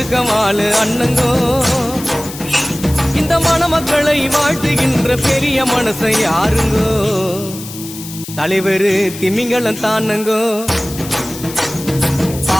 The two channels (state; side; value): noise; left; hiss, 13 dB below the sound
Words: அண்ணங்கோ. இந்த மணமக்களை வாழ்த்துகின்ற பெரிய மனசை யாருங்கோ. தலைவரு திமிங்கலம் தானுங்கோ.